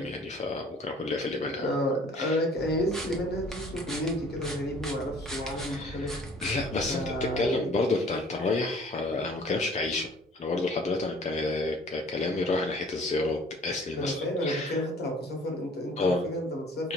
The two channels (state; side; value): normal; both; correlation 0.53